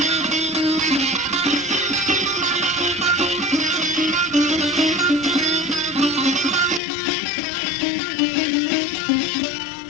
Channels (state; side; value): drops out; right; at 6.8 s